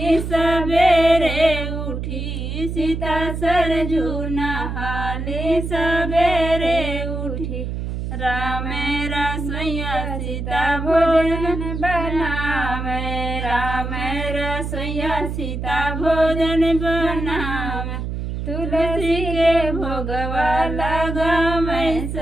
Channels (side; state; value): right; noise; hum, 4 dB below the sound